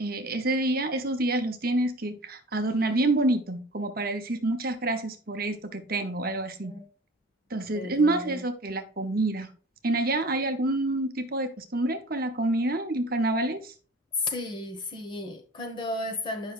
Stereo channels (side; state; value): both; normal; correlation 0.41